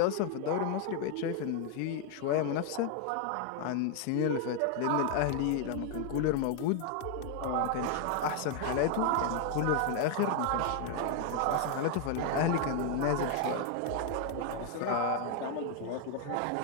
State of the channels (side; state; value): both; different; correlation 0.00